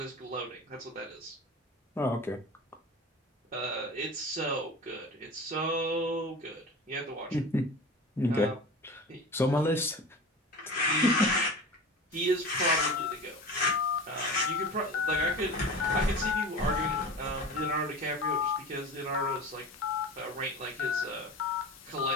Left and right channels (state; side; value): normal; both; correlation 0.34